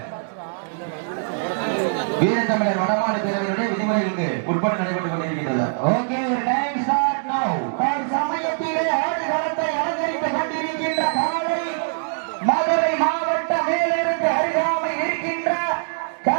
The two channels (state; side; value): silent; left; digital silence